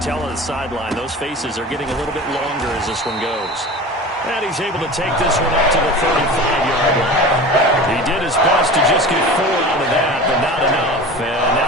on the sideline, those faces are getting a little bit longer as this one goes. And he's able to take this one up to the 35-yard line. He did his best to just get 4 out of that, but not enough. And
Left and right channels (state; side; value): normal; both; correlation 0.35